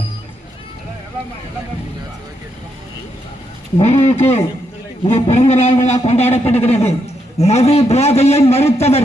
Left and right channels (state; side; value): normal; both; correlation 0.79